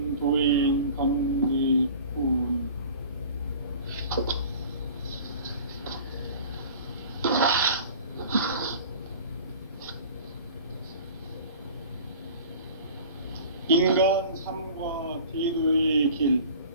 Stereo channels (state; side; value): inverted; both; correlation -0.42